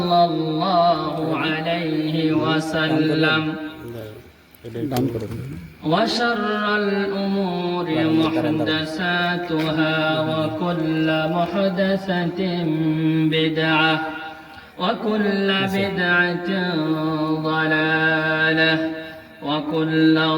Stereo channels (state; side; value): identical; both; correlation 1.00